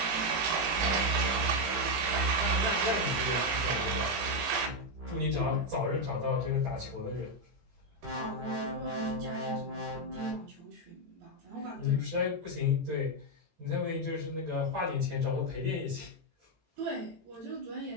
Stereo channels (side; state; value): left; late; 18 ms